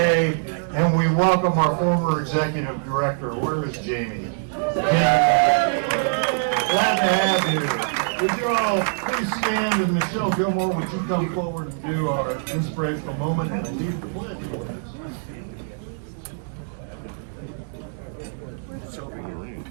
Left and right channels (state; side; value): silent; left; digital silence